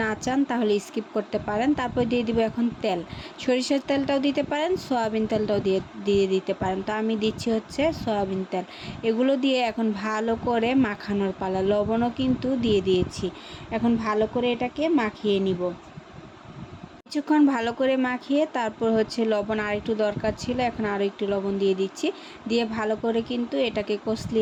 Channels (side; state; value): both; identical; correlation 1.00